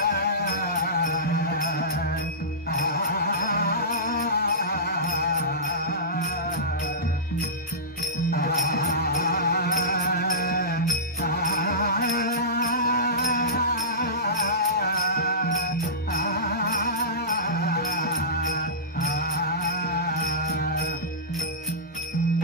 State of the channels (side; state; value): both; normal; correlation -0.19